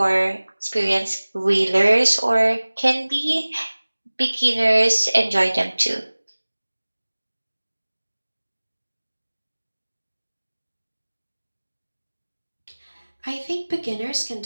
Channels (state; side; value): inverted; both; correlation -1.00